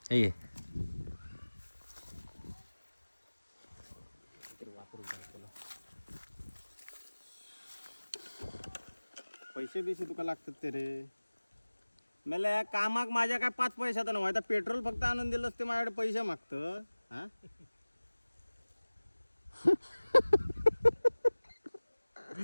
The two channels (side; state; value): both; inverted; correlation -1.00